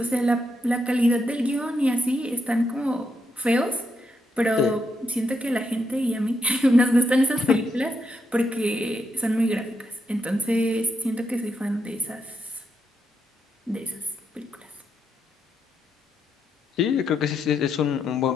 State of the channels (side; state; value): both; normal; correlation 0.81